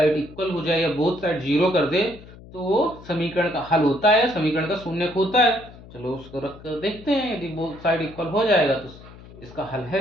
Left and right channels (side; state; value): left; noise; hum, 19 dB below the sound